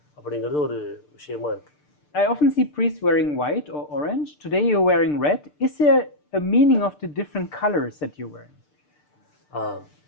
அப்படிங்கிறது ஒரு விஷயமா இருக்குது. I often see priests wearing white or orange. Today you're wearing red. Is there a meaning of the different colors that you're wearing?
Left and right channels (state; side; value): late; right; 6.7 ms